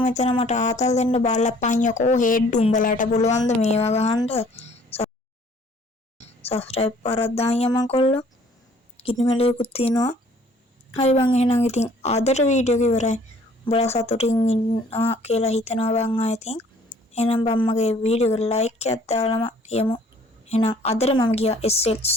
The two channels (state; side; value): normal; both; correlation 0.57